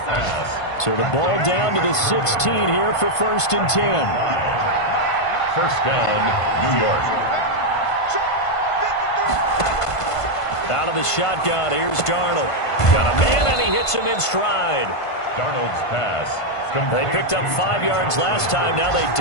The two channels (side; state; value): right; late; 1.5 ms